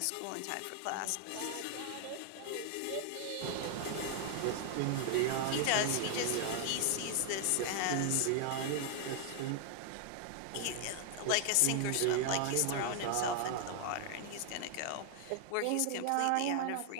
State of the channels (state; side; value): different; both; correlation 0.00